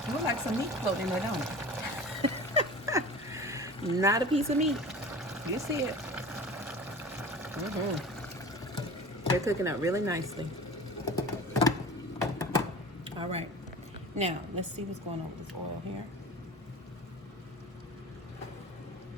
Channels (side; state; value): both; normal; correlation 0.38